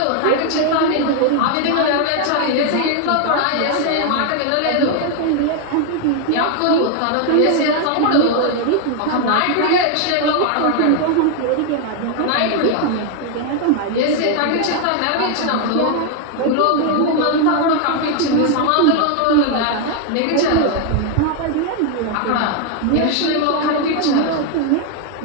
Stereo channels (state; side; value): different; both; correlation 0.00